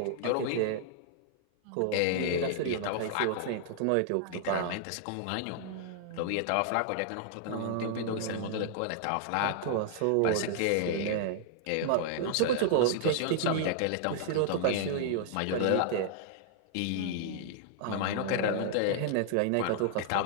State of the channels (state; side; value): different; both; correlation -0.01